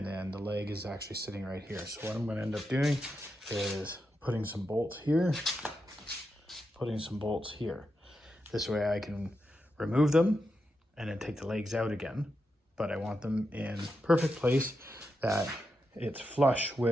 then the leg is actually sitting right here. So what I'm going to end up doing is putting some bolts here, putting some bolts here. This way I can remove them and then take the legs out again. But I want them in perfect place, that it's flush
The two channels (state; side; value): normal; both; correlation 0.86